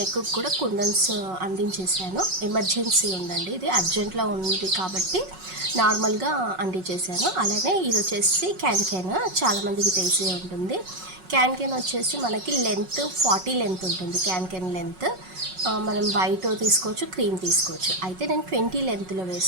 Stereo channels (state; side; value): late; left; 5.4 ms